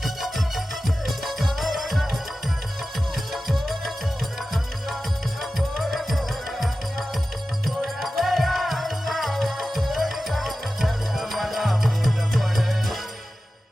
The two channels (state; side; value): normal; both; correlation 0.94